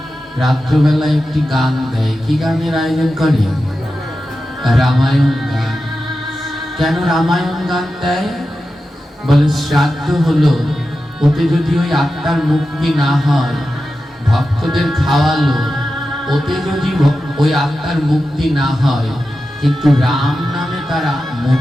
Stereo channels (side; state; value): both; normal; correlation 0.92